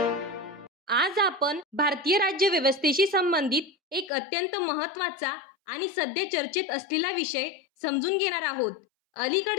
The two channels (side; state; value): right; drops out; at 4.1 s